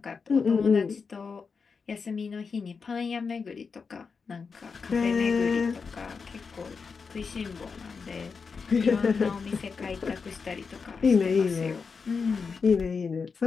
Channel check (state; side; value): quieter; right; 5.3 dB